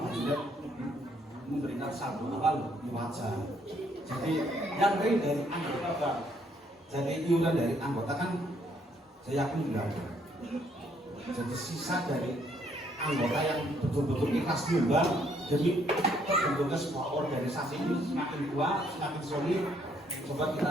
Jidat memberikan saldo awal wajar. Jadi yang real dari anggota Bang. Jadi iuran dari anggota kan saya yakin tidak ada. Jadi sisa dari anggota yang betul-betul ikhlas nyumbang demi terbentuknya sebuah organisasi ini semakin kuat, semakin solid. Coba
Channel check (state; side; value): normal; both; correlation 0.68